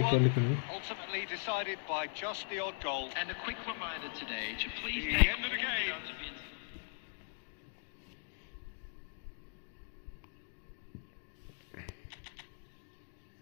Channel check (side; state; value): right; silent; digital silence